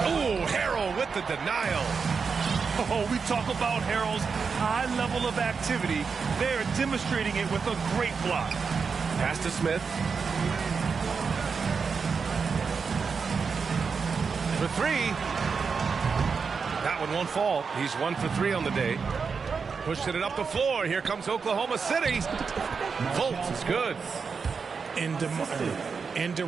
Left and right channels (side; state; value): left; quieter; 5.4 dB